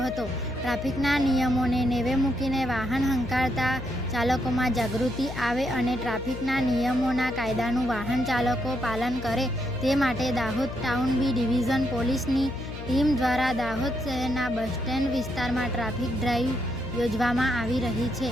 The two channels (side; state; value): left; noise; hum, 9 dB below the sound